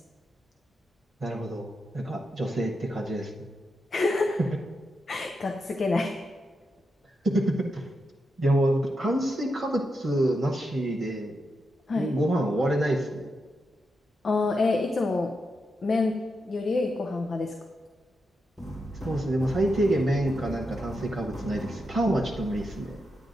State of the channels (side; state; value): both; normal; correlation 0.85